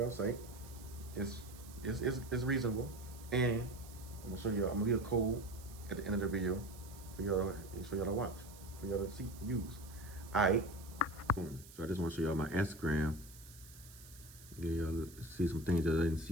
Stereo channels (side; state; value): right; noise; hiss, 19 dB below the sound